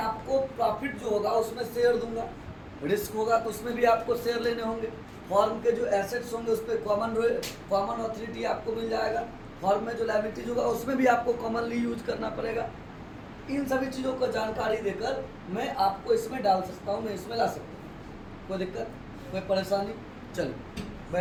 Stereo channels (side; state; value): both; identical; correlation 1.00